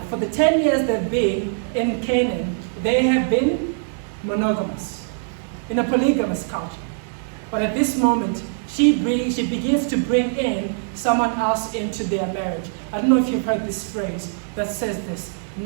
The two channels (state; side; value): silent; left; digital silence